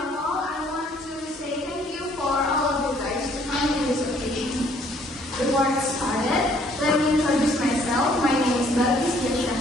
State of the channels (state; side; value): normal; both; correlation 0.62